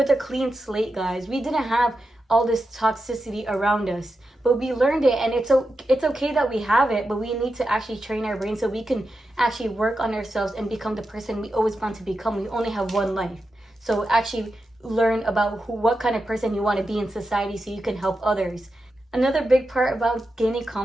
a clean slate, guys. We didn't have all this toxicity around us, but we learned it, and it's okay that we have it, but we need to actually train our brain so we can actually work on ourselves and become the person we always want to become. We only have one life, so actually learn about what kind of person you want to be in society so you can help others. Another big part about gaining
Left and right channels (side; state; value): both; normal; correlation 0.89